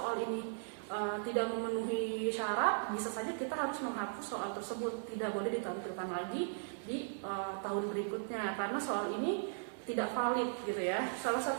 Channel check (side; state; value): left; silent; 53 dB below the other